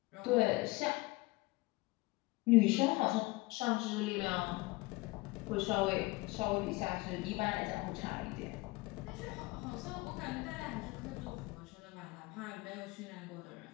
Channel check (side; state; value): right; quieter; 22.5 dB